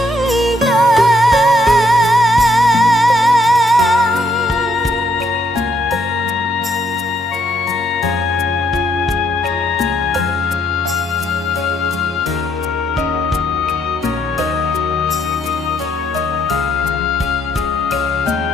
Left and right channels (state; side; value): normal; both; correlation 0.72